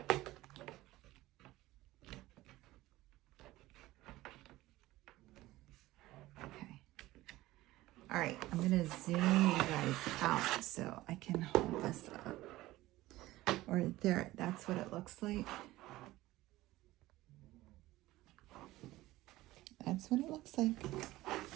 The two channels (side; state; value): left; quieter; 17.4 dB